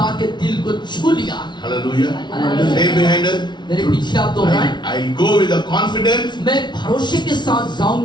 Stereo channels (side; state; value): right; late; 0.21 ms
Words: के दिल को छू लिया। Hallelujah. Hallelujah. Say behind us. मेरे पीछे आप दोहराएं। I go with a confidence मैं भरोसे के साथ